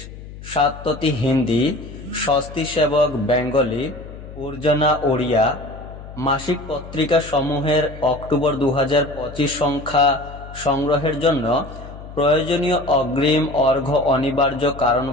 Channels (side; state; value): left; noise; hum, 14 dB below the sound